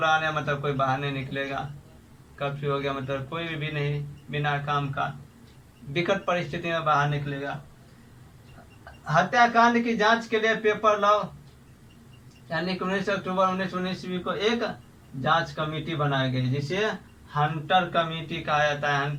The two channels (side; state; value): both; identical; correlation 1.00